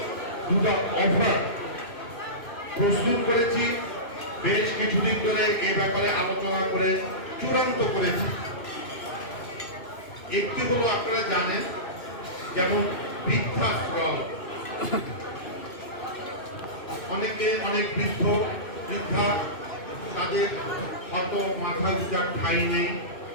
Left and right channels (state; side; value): late; right; 2.6 ms